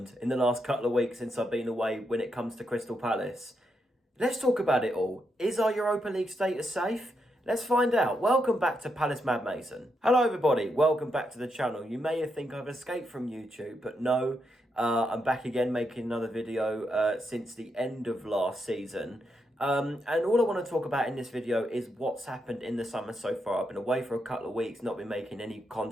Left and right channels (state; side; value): normal; both; correlation 0.82